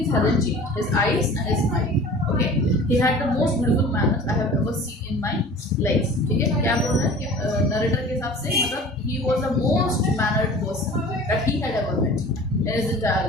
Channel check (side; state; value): both; normal; correlation 0.42